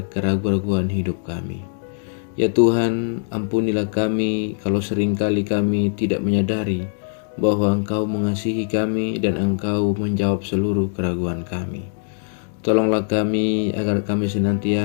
keraguan-raguan hidup kami. Ya Tuhan, ampunilah kami kalau seringkali kami tidak menyadari bahwa Engkau mengasihi kami dan Engkau menjawab seluruh keraguan kami. Tolonglah kami agar kami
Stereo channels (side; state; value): right; silent; digital silence